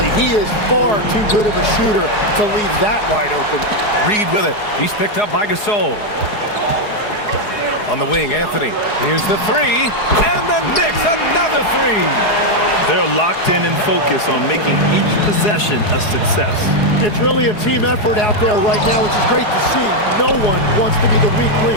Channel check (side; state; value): right; late; 4.8 ms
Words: He is far too good of a shooter to leave that wide open. Reed with it. He's picked up by Gasol. On the wing, Anthony. Here's the 3. And the Knicks, another 3. They're locked in and focused on making each possession a success. It's really a team effort out there right now, which is great to see. No one wants to be the weak